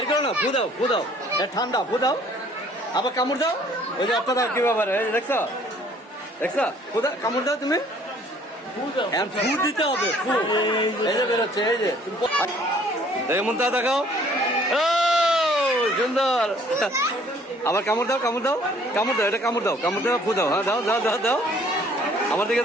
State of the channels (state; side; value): normal; both; correlation 0.58